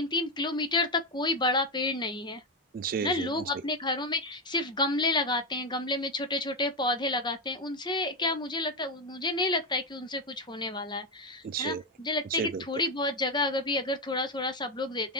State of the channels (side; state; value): both; normal; correlation 0.09